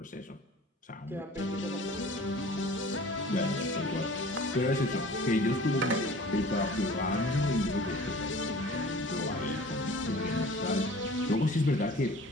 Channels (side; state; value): both; normal; correlation 0.45